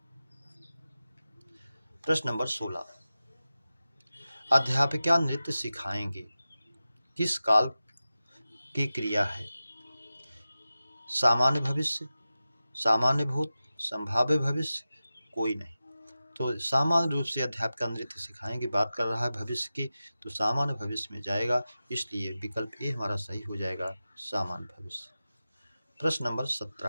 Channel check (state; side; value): inverted; both; correlation -0.94